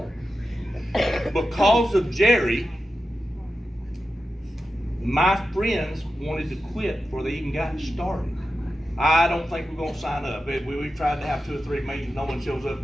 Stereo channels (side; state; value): both; normal; correlation 0.91